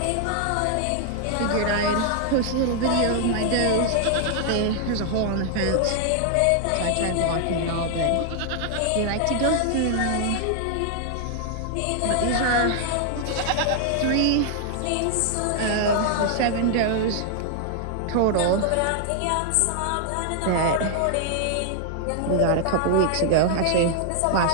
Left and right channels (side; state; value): both; different; correlation 0.00